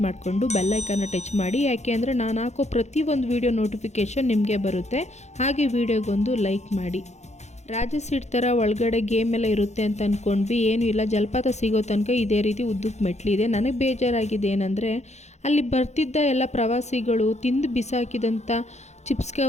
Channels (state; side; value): late; right; 0.33 ms